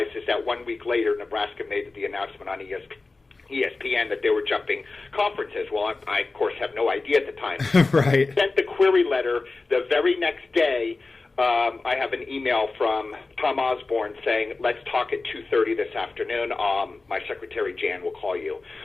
is that 1 week later, Nebraska made the announcement on ESPN that they were jumping conferences. Well, I of course, have no idea at the time. Right. Sent the query letter the very next day. I have an email from Tom Osborne saying, let's talk at 2:30 this afternoon. My secretary, Jan, will call you.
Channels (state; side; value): quieter; right; 3.6 dB